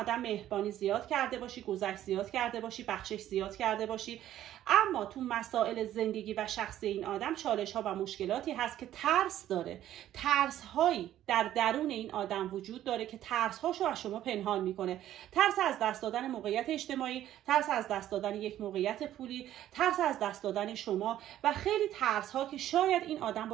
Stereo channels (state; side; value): quieter; left; 12.4 dB